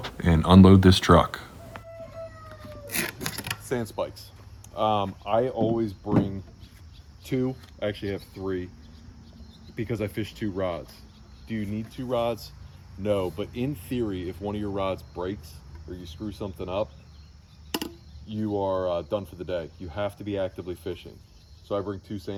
and unload this truck. Sand spikes. I always bring two, I actually have three, because I fish two rods. Do you need two rods? No, but in theory, if one of your rods breaks or you screw something up, you are done for the day. You have to be actively fishing. So I bring two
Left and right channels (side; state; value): both; identical; correlation 1.00